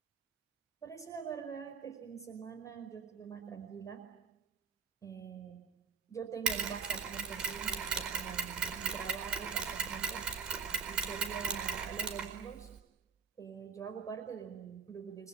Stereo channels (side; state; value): left; quieter; 6.2 dB